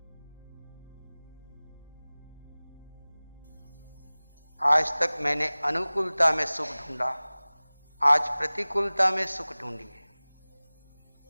आज तक मैंने अनुकूलता में सुख ढूंढा, आज प्रतिकूलता में सुख ढूंढिए।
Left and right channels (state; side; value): inverted; both; correlation -1.00